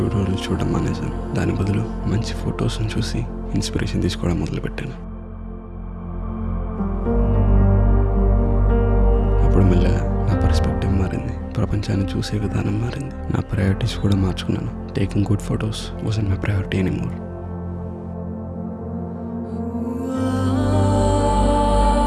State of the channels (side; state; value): both; identical; correlation 1.00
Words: చూడడం మానేశాను. దాని బదులు మంచి ఫొటోస్ని చూసి ఇన్స్పిరేషన్ తీసుకోవడం మొదలుపెట్టాను. అప్పుడు మెల్లగా నా పర్స్పెక్టివ్ మారింది, ప్రపంచాన్ని చూసే విధానం మారింది. నా ప్రయారిటీస్ కూడా మార్చుకున్నాను. Taking good photos wasn't my priority anymore.